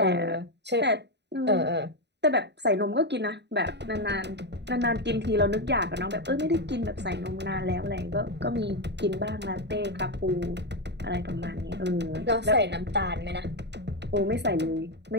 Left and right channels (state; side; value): late; left; 0.50 ms